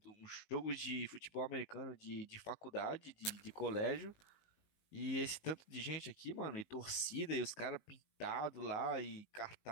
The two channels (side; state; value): right; late; 19 ms